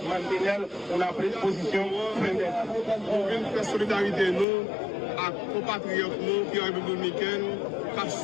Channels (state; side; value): drops out; right; at 4.5 s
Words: mantener una posición frente a eso. La solidarité nous, à compatriotes nous qui ont été dominicains, qui ont